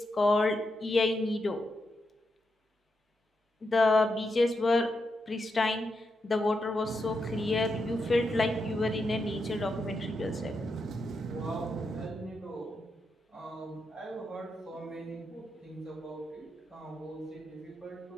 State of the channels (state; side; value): normal; both; correlation 0.84